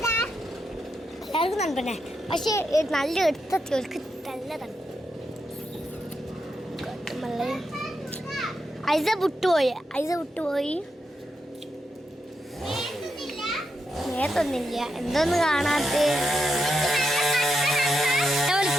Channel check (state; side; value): normal; both; correlation 0.84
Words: എല്ലാവർക്കും തണുപ്പന്നെ, പക്ഷെ നല്ല എടുത്തെത്തിയവർക്ക് നല്ല തണുപ്പ്. ഐസ വിട്ടുപോയി. നേരത്തൊന്നില്ല. എന്തോന്ന് കാണാത്ത